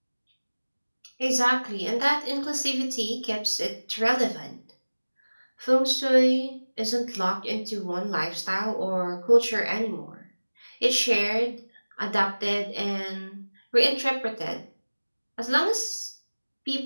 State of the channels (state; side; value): inverted; both; correlation -1.00